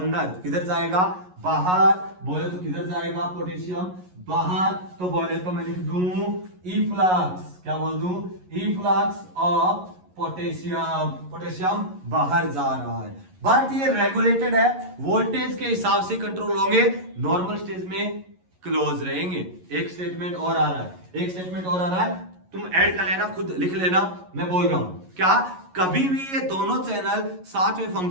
किधर जाएगा, बाहर। बोले तो किधर जाएगा पोटेशियम, बाहर। तो बोले तो मैं लिख दूं इफ्लक्स, क्या बोल दूं, इफ्लक्स ऑफ पोटेशियम, पोटेशियम बाहर जा रहा है। बट ये रेगुलेटेड है, वोल्टेज के हिसाब से कंट्रोल होंगे, नॉर्मल स्टेज में क्लोज रहेंगे। एक स्टेटमेंट और आ रहा है, एक स्टेटमेंट और आ रहा है, तुम ऐड कर लेना, खुद लिख लेना, मैं बोल रहा हूं क्या, कभी भी ये दोनों चैनल साथ में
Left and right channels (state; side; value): late; left; 11 ms